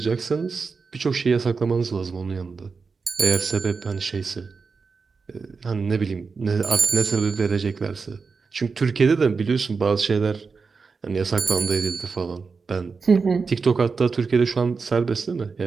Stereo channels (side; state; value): left; quieter; 4.9 dB